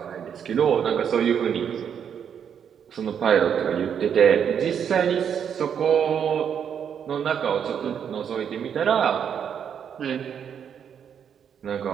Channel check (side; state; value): left; quieter; 8.1 dB